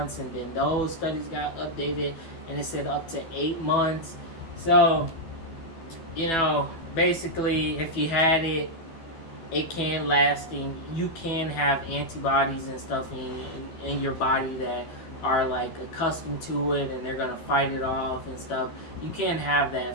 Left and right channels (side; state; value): right; late; 12 ms